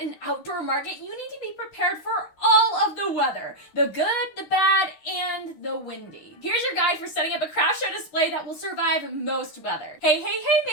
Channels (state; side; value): late; right; 13 ms